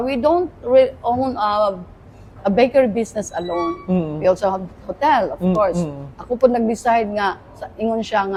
own a bakery business alone. We also have hotel, of course. Ako po nag-decide nga, ingon siya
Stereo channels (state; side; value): identical; both; correlation 1.00